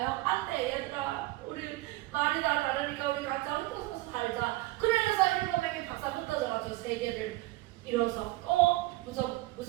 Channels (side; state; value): left; quieter; 18.9 dB